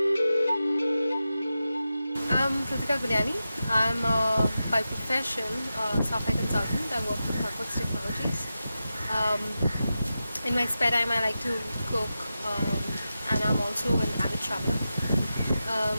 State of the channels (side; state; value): both; inverted; correlation -0.91